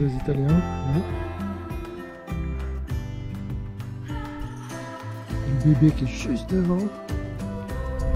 Italiens. Là. Le bébé qui est juste devant.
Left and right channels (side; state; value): both; identical; correlation 1.00